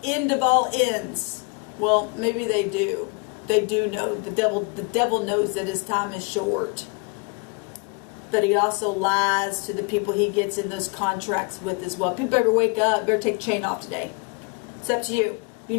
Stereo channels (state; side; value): quieter; right; 32.1 dB